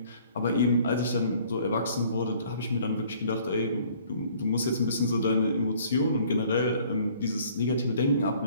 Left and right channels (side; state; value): both; inverted; correlation -0.57